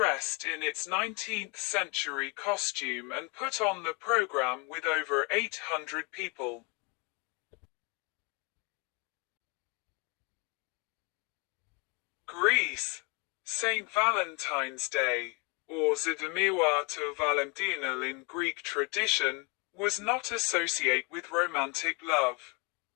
in its 19th century costume and put on the program with over 800 people. Greece. St. Valentine's Day, or Zydamiła to Valentinal in Greek tradition, was not associated with romantic love.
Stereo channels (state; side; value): quieter; right; 31.6 dB